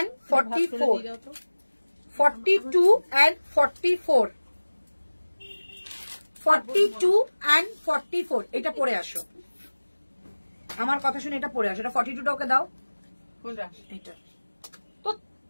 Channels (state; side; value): inverted; both; correlation -1.00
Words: 44, 42 and 44, 42 and 44। এটা পরে আসো, আমার কথা শুনে এটা পরে আসো। এটা 42টা ওকে দাও, কোনটা? এটা তো